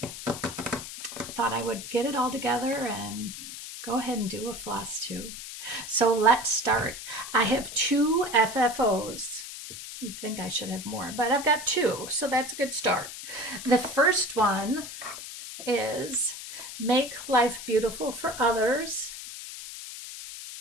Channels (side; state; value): left; noise; hiss, 10 dB below the sound